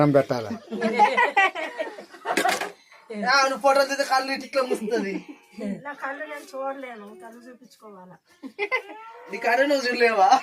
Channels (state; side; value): identical; both; correlation 1.00